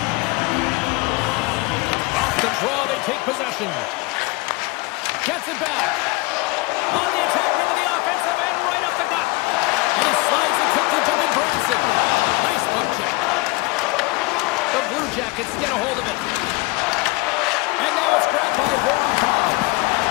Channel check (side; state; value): right; quieter; 24.8 dB